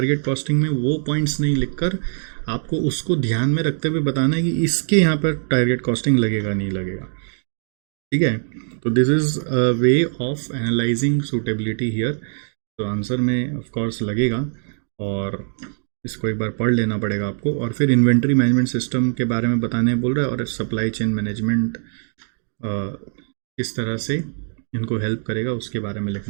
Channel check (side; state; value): left; silent; 64 dB below the other